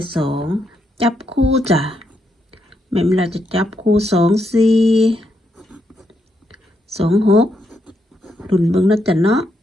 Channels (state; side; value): normal; both; correlation 0.79